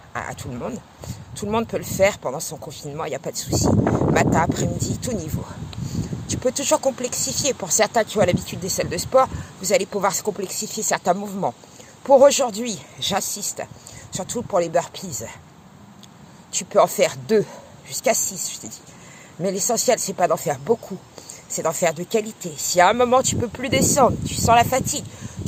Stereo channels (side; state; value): both; identical; correlation 1.00